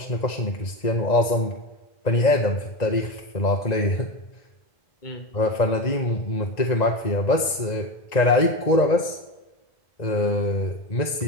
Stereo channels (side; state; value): right; late; 1.9 ms